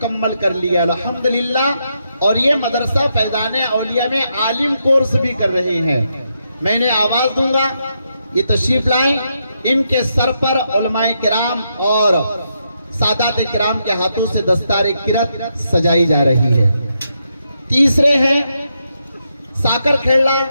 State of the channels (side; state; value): both; inverted; correlation -0.81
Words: कर लिया अल्हम्दुलिल्लाह, और ये मदरसा फैजान औलिया में आलिम कोर्स भी कर रहे हैं। मैं इन्हें आवाज दूंगा, ये तशरीफ लाएं। इनके सर पर उलमाए किराम और सादात किराम के हाथों से दस्तार किरत सजाई जा रही है। तीसरे हैं साकर खेड़ा